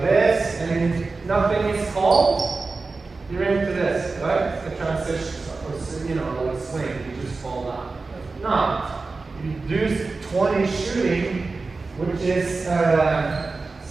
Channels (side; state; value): left; quieter; 3.9 dB